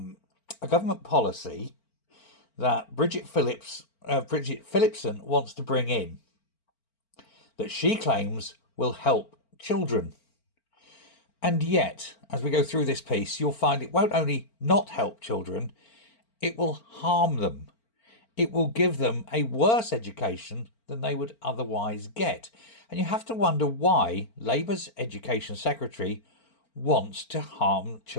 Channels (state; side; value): late; right; 4.4 ms